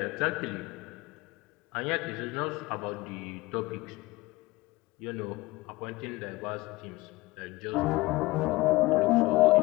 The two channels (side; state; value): right; quieter; 20.9 dB